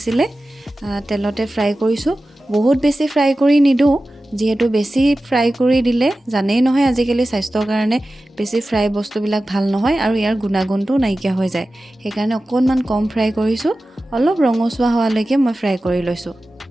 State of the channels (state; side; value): normal; both; correlation 0.95